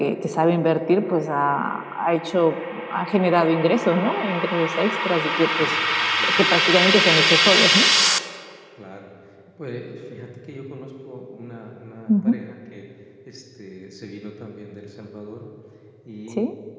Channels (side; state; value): both; identical; correlation 1.00